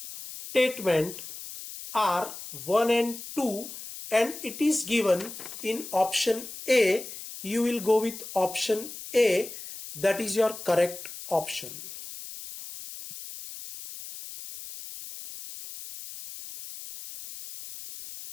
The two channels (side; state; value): left; noise; hiss, 12 dB below the sound